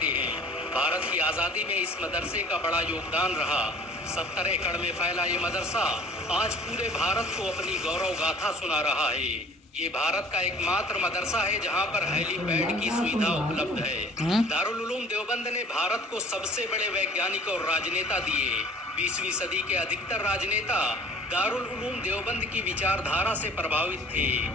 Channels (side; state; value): both; normal; correlation 0.49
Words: हैं। भारत की आज़ादी में इस मदरसे का बड़ा योगदान रहा। 70 एकड़ में फैला ये मदरसा आज पूरे भारत को अपनी गौरव गाथा सुना रहा है। ये भारत का एकमात्र मदरसा है जहां पर हेलीपैड की सुविधा उपलब्ध है। दारुल उलूम देवबंद ने भारत को सबसे बड़े वैज्ञानिक और राजनेता दिए। 20वीं सदी के अधिकतर राजनेता दारुल उलूम देवबंद की विचारधारा से प्रभावित थे।